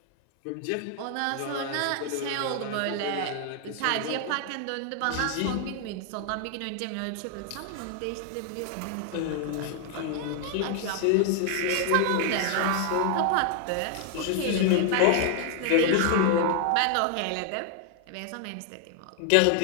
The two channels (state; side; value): different; both; correlation 0.00